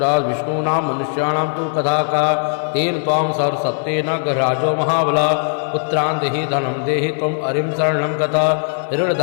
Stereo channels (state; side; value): silent; right; digital silence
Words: विष्णूनां मनुष्याणां तु कथा का तेन त्वां सर्वसत्त्वेन गृहराजो महाबला पुत्रान् देहि धनं देहि त्वम् अरिं शरणं गता